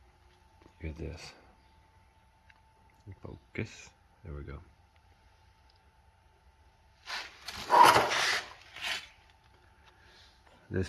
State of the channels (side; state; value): both; identical; correlation 1.00